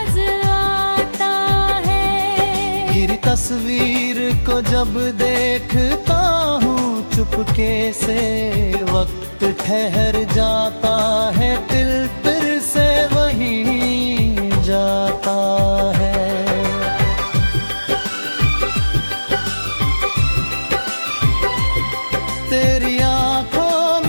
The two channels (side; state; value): both; inverted; correlation -1.00